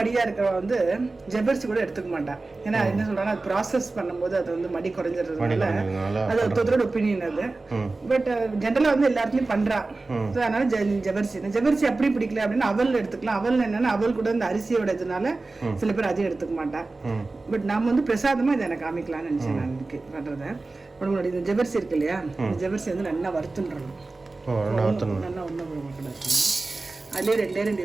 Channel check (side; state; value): left; quieter; 3.4 dB